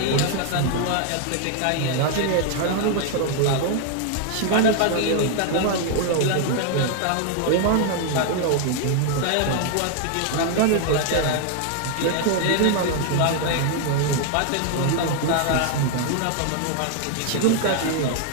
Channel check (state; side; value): different; both; correlation 0.00